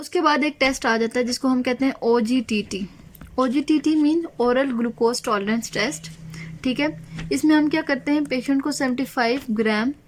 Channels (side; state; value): both; identical; correlation 1.00